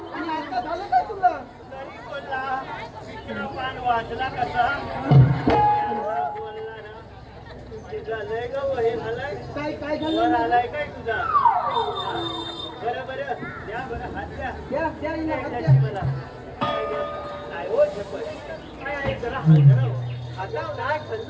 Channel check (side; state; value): both; identical; correlation 1.00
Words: आणि आता झालं काय तुला वाजला कसा झालंय ग वही झालंय काय काय झालं आलाय काय तुझा बरं बरं द्या बरं हात द्या द्या द्या हिला हात द्या. मला काय हो झेपत काय आहे जरा हात आता नाही